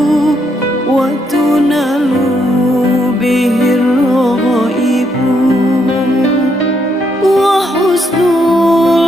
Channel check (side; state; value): both; normal; correlation 0.75